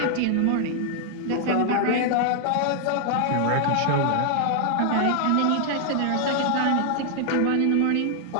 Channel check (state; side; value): different; both; correlation 0.00